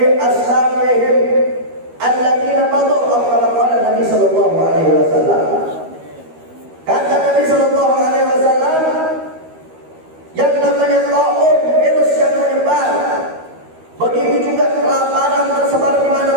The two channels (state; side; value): late; left; 13 ms